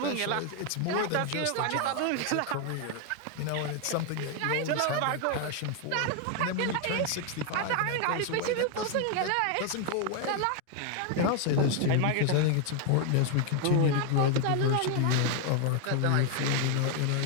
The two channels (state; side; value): different; both; correlation 0.01